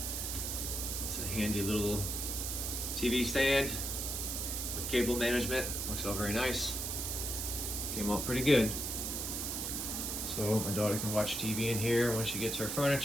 It's a handy little TV stand with cable management. Works out very nice. Came out pretty good. So my daughter can watch TV in here when she gets her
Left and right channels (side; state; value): right; noise; hiss, 2 dB below the sound